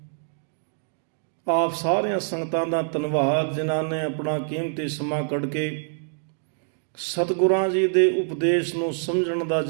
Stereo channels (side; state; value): left; silent; digital silence